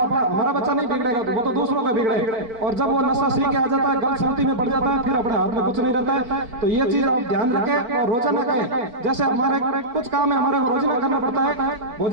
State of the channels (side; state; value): left; late; 4.4 ms